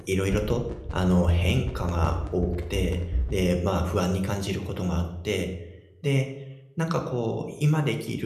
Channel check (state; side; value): identical; both; correlation 1.00